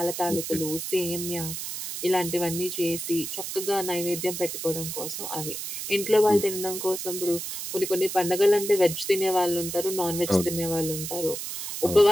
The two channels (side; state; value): right; noise; hiss, 6 dB below the sound